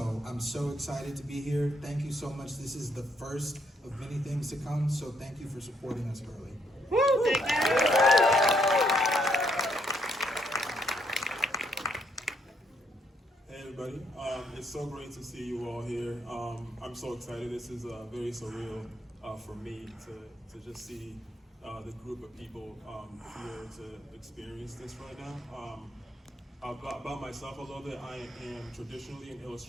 I'm so excited to be here. Thank you so much. This is the first of many things to come, so thank you for supporting us early. Woo, thank you. Hey everybody, it's so great to see you all here. I'm so excited. This is very surreal for me to just see the group of people here to experience this right now. About myself a little bit, I am traditionally an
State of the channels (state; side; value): normal; both; correlation 0.73